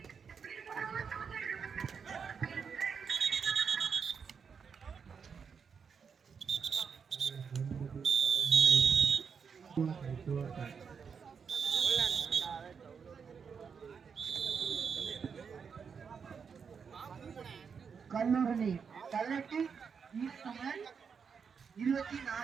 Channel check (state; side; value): quieter; left; 6.3 dB